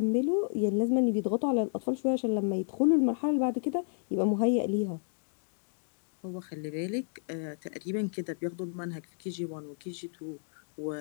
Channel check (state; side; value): silent; right; digital silence